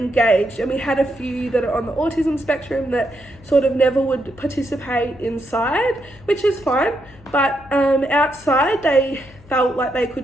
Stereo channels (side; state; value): left; noise; hum, 24 dB below the sound